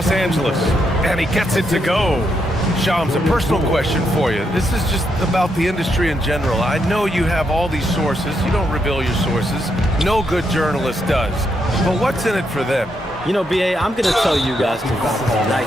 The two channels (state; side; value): normal; both; correlation 0.79